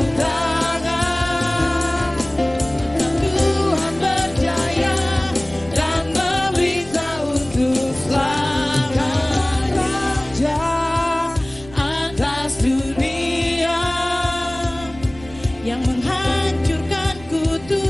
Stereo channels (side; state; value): right; noise; rumble, 19 dB below the sound